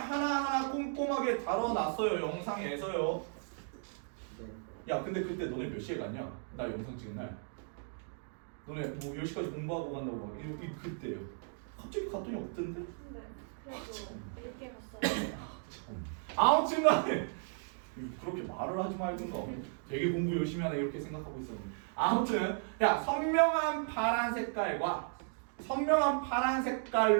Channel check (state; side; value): silent; left; 54 dB below the other